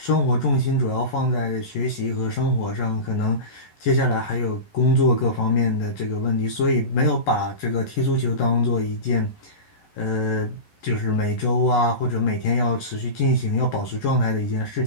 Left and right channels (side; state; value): right; late; 11 ms